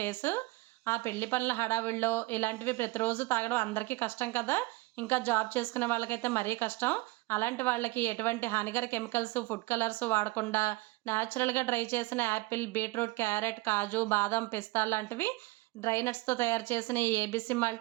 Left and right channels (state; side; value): quieter; left; 21.5 dB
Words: ఆ పెళ్లి పనుల హడావిడిలో ఇలాంటివి ప్రతిరోజు తాగడం అందరికీ కష్టం కదా! ఇంకా జాబ్ చేసుకునే వాళ్ళకైతే మరీ కష్టం. అలాంటి వాళ్ళకి ఎటువంటి హానికర కెమికల్స్, ఫుడ్ కలర్స్ వాడకుండా నేచురల్‌గా డ్రై చేసిన యాపిల్, బీట్రూట్, క్యారెట్, కాజు, బాదం, పిస్తా లాంటివి డ్రై నట్స్‌తో తయారు చేసిన ఈ ఏబీసీ